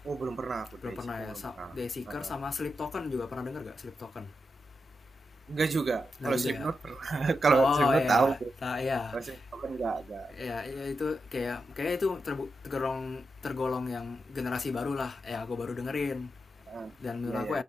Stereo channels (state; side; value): normal; both; correlation 0.87